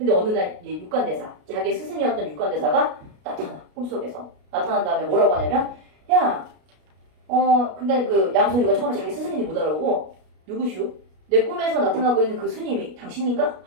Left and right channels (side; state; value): left; late; 33 ms